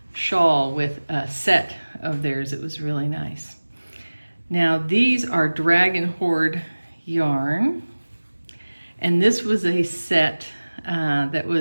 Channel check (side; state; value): both; inverted; correlation -1.00